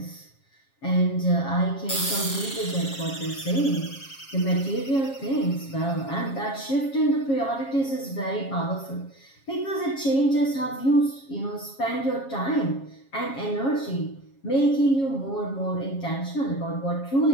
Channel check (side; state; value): right; late; 7.3 ms